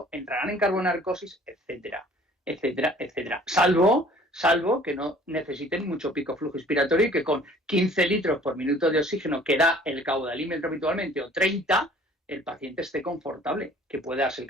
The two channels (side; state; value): both; normal; correlation 0.52